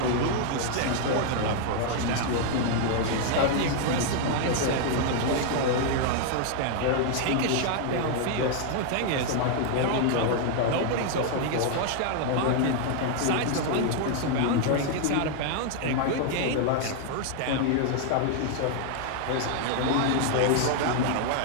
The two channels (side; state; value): both; different; correlation 0.00